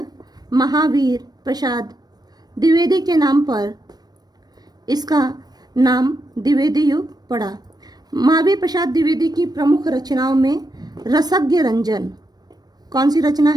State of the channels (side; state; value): left; late; 0.19 ms